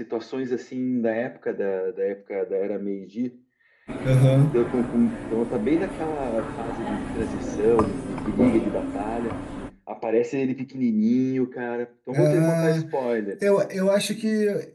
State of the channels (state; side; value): identical; both; correlation 1.00